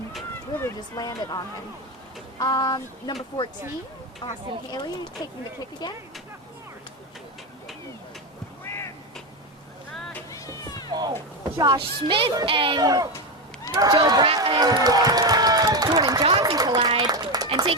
really just landed on him. Number 14, Austin Haley, taking the kick again. Josh Smith and Joe Brett and Jordan Johnson collide, and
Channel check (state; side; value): normal; both; correlation 0.13